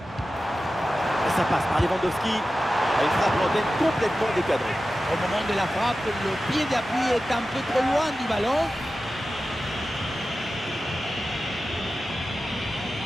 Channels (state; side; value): normal; both; correlation 0.94